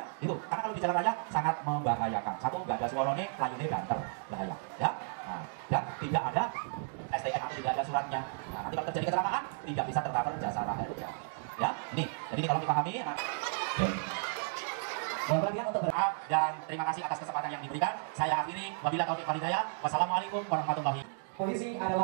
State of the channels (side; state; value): left; silent; digital silence